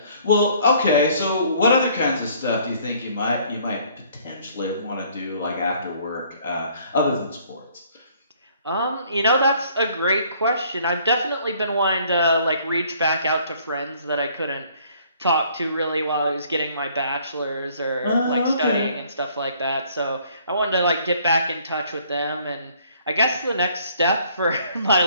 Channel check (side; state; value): both; inverted; correlation -0.60